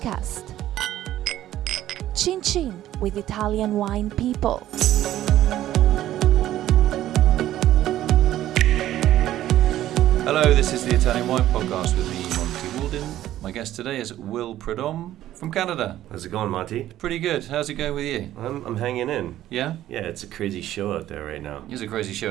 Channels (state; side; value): quieter; left; 13.3 dB